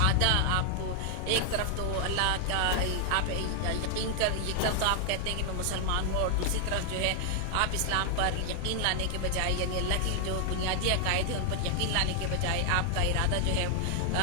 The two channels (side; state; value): both; different; correlation 0.00